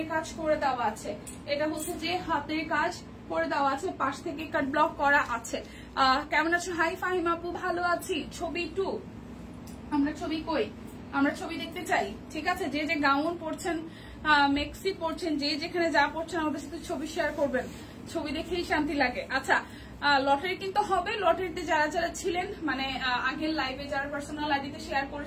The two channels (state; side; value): identical; both; correlation 1.00